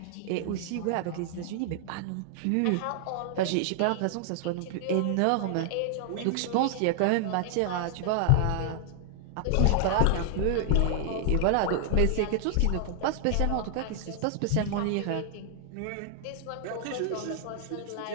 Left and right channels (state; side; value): different; both; correlation -0.01